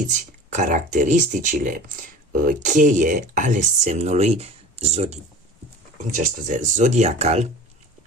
caracteristicile cheie ale semnului zodiacal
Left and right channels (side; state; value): both; normal; correlation 0.39